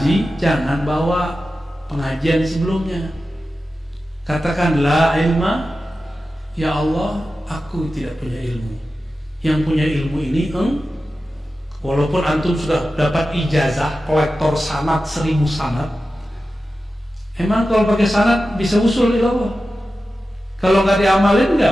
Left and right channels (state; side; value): normal; both; correlation 0.93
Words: jangan bawa pengajian sebelumnya. Katakan la ilma, ya Allah, aku tidak punya ilmu. Yang punya ilmu ini walaupun antum sudah dapat ijazah kolektor sanad 1000 sanad, emang kalau pakai sanad bisa usul ilallah? Kalau nggak diamalin